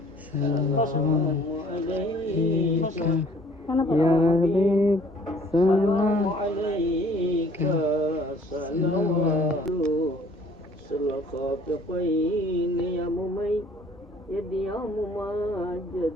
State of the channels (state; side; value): normal; both; correlation 0.56